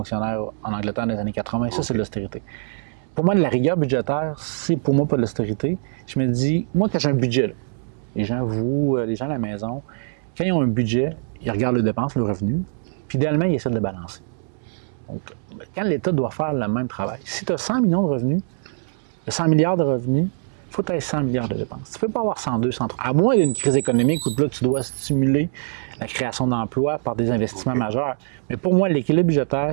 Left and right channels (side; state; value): left; silent; 64 dB below the other